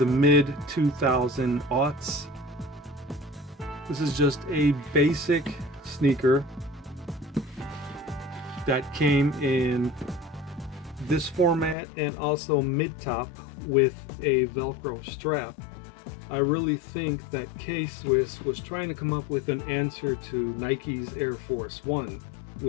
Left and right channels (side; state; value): right; drops out; at 11.8 s